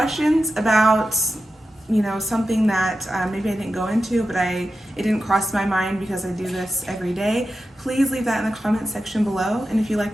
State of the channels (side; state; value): both; normal; correlation 0.91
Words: about, something that maybe I didn't go into, but it didn't cross my mind because I do this every day, please leave that in the comment section below. And if you